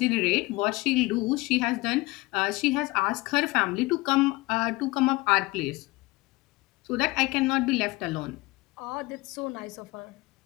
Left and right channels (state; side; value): quieter; right; 22.4 dB